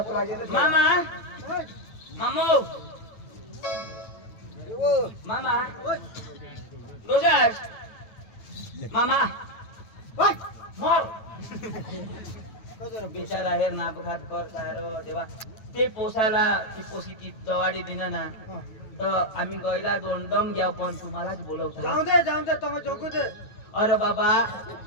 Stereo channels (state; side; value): late; right; 9.2 ms